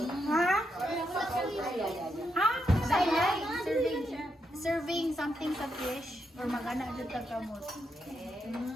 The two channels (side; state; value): both; normal; correlation 0.82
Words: Ha? Ha? Serving something sa fish or magana dito kamot.